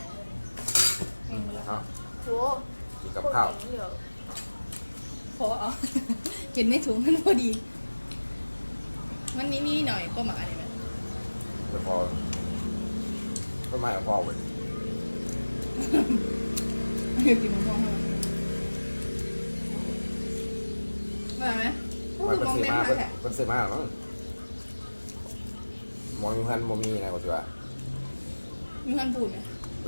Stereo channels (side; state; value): both; inverted; correlation -1.00